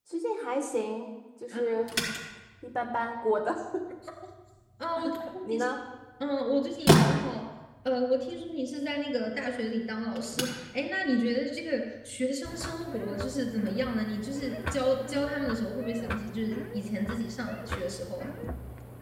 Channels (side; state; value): both; identical; correlation 1.00